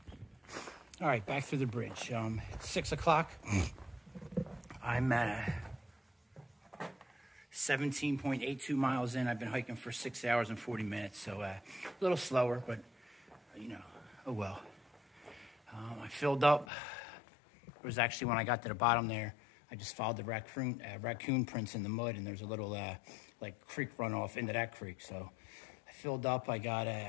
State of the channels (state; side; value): drops out; right; at 16.7 s